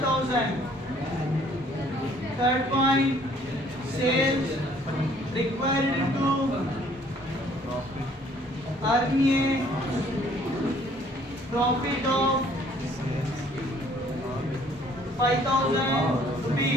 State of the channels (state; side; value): normal; both; correlation 0.59